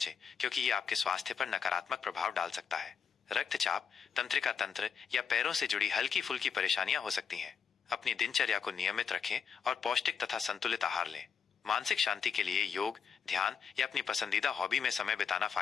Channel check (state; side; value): quieter; right; 6.7 dB